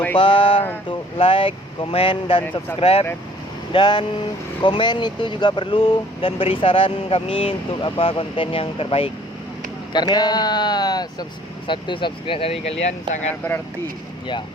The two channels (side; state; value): both; normal; correlation 0.56